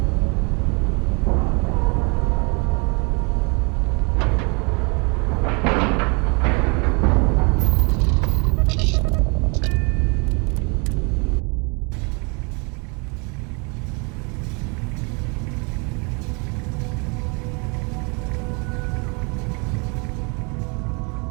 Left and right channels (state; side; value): quieter; left; 32.6 dB